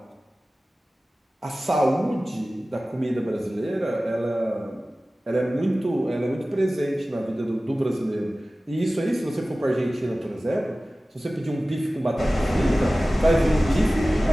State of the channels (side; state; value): both; normal; correlation 0.97